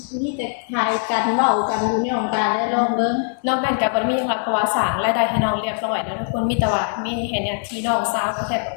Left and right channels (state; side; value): silent; right; 62 dB below the other